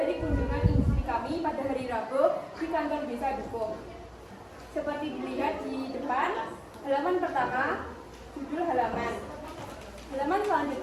kunjungan industri kami pada hari Rabu di kantor Desa Dukuh. Seperti dilihat di depan, halaman pertama, judul halaman. Halaman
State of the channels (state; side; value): identical; both; correlation 1.00